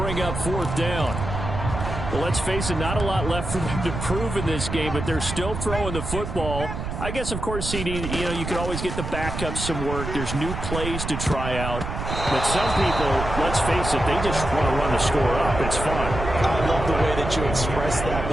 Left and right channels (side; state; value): right; noise; rumble, 5 dB below the sound